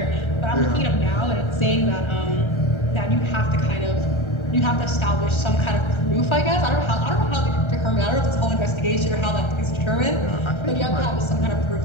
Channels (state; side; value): late; right; 1.3 ms